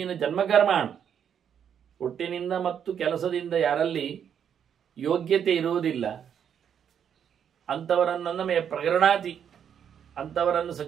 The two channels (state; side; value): quieter; left; 8.4 dB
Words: ಜನ್ಮಕರ್ಮಾಣ, ಹುಟ್ಟಿನಿಂದ ಮತ್ತು ಕೆಲಸದಿಂದ ಯಾರಲ್ಲಿ ಯೋಗ್ಯತೆ ಇರುವುದಿಲ್ಲ ಅಂಥವರನ್ನು ಪ್ರಕರಣಾತಿ, ಅಂಥವರನ್ನು